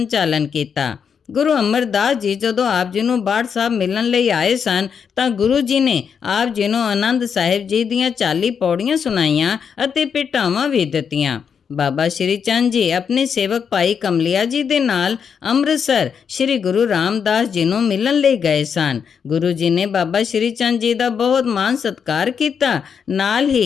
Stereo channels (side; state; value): right; quieter; 6.9 dB